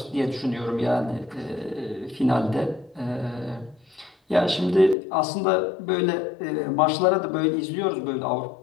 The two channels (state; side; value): drops out; right; at 5.0 s